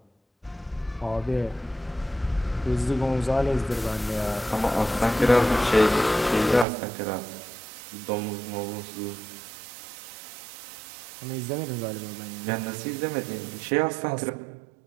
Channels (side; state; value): left; drops out; at 6.7 s